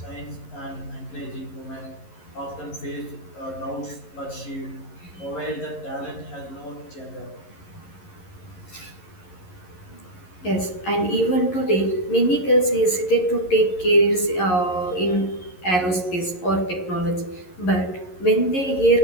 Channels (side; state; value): right; late; 11 ms